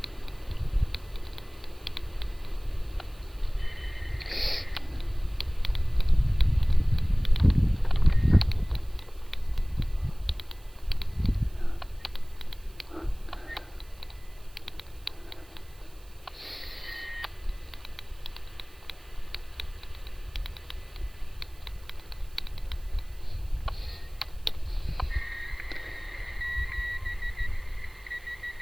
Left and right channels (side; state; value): right; noise; hiss, 26 dB below the sound